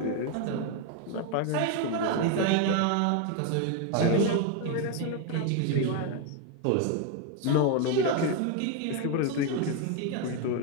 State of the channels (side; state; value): both; different; correlation 0.01